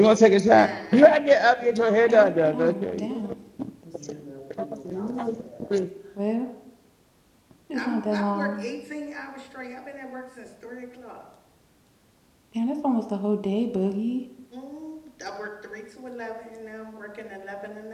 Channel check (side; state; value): both; identical; correlation 1.00